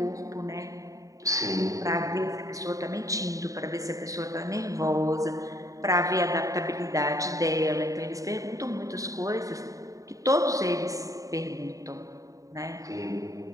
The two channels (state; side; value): late; left; 0.16 ms